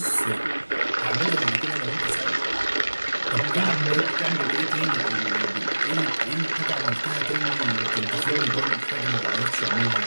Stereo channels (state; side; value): inverted; both; correlation -1.00